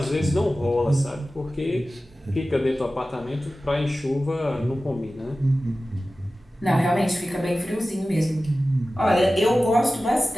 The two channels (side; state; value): both; normal; correlation 0.95